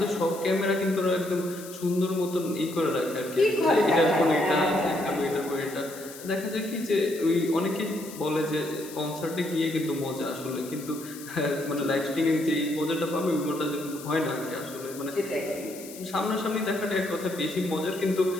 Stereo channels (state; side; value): noise; left; hiss, 15 dB below the sound